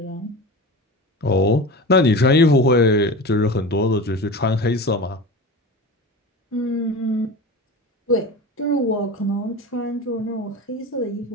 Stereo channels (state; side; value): normal; both; correlation 0.30